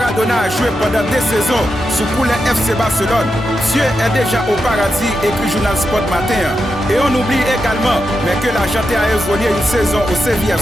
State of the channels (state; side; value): normal; both; correlation 0.87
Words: a joué pendant 2 saisons sous couleur FC Barcelone. Dieu est déjà au paradis, écrit Journal Sport Matin. Et on oublie également, mais que l'Argentin a évolué une saison au